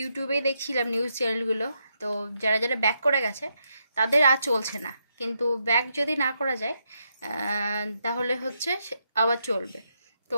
দেখছিলাম নিউজ চ্যানেলগুলো। তো যারা যারা ব্যাক করে গেছে তাদের আর চলছে না, কিন্তু ব্যাক যদি না করা যায় তাহলে হচ্ছে আবার চলবে। তো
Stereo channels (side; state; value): both; inverted; correlation -0.81